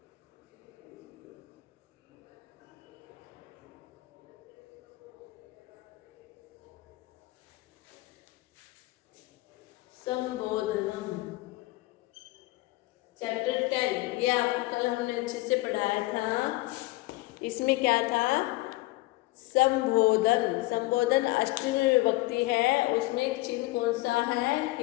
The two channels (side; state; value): right; quieter; 20.4 dB